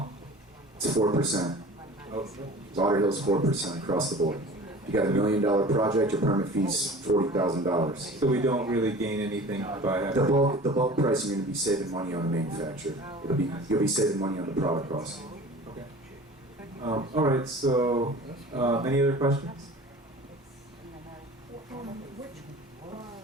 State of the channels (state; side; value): normal; both; correlation 0.42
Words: It's 4%. Oh, Lauderhill's 4% across the board. You got $1 million project, your permit fee's $40,000. so we don't really gain anything by having. The bulk pricing, you're gonna be saving money on the manufacturer. You'll be saving money on the product cost. Okay. All right, so, any other questions? Which,